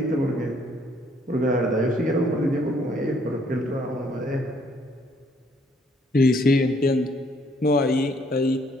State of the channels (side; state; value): both; normal; correlation 0.65